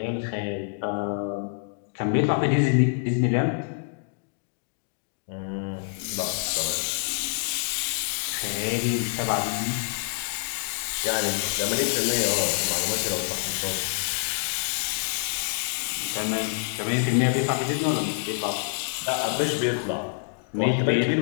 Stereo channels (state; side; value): silent; right; digital silence